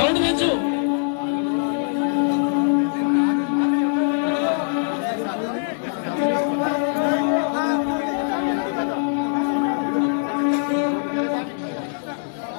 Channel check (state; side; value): silent; right; digital silence